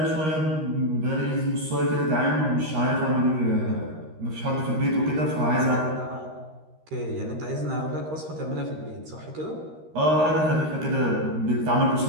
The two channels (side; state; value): left; late; 13 ms